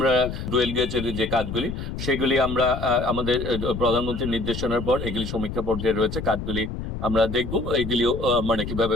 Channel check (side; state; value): left; noise; rumble, 6 dB below the sound